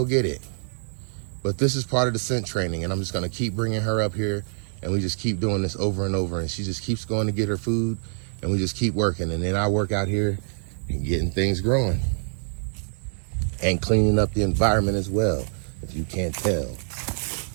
get it. But this is part of the scent training, and I'm just gonna keep bringing her up here, and we just keep doing this over and over, and she just keeps going to get her food, and we just keep working, and then I work out here and getting things growing and cleaning up the environment as well, if you can't tell.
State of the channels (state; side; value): silent; left; 61 dB below the other